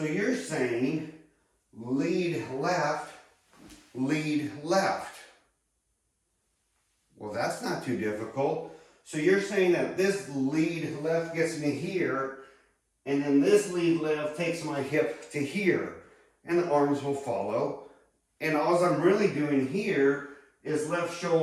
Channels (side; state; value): both; identical; correlation 1.00